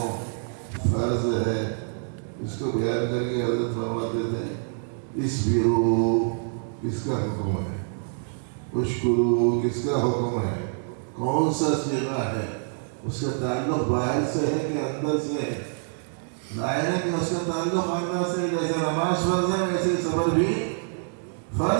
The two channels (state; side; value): silent; left; digital silence